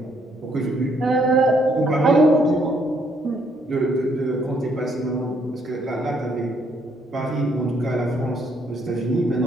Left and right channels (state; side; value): normal; both; correlation 0.70